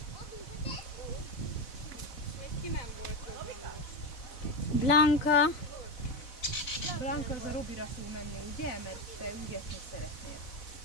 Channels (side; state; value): right; late; 4.0 ms